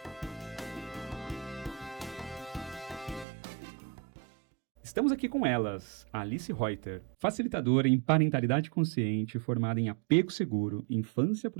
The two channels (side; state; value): left; drops out; at 3.2 s